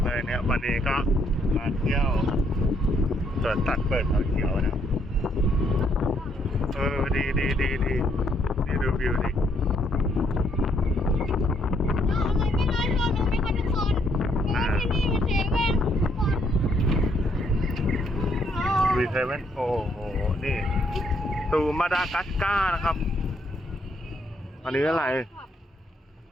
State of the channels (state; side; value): normal; both; correlation 0.71